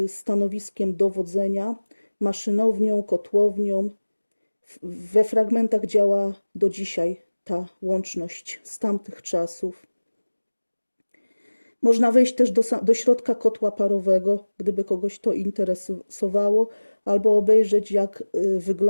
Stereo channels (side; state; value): both; inverted; correlation -1.00